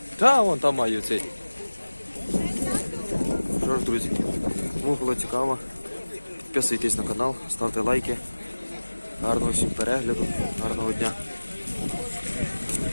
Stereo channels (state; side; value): inverted; both; correlation -1.00